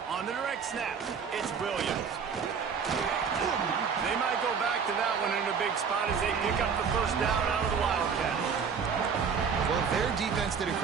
On the direct snap, it's Williams. They might go back to that one in a big spot as they pick up the first down out of the Wildcat. Well, their defense did a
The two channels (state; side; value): quieter; left; 6.3 dB